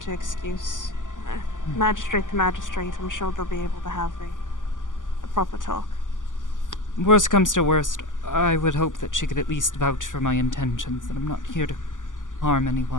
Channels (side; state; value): right; late; 0.87 ms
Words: excuse. Magistrate to magistrate, I'm sure they'll be able to have a proper talk. Worst comes to worst, I would hope that she could at least vouch for my intentions, that I'm not here to harm